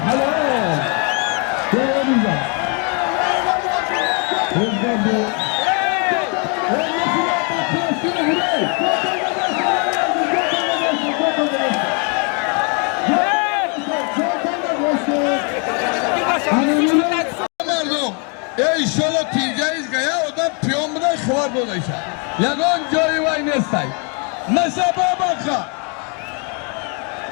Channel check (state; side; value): quieter; right; 36.4 dB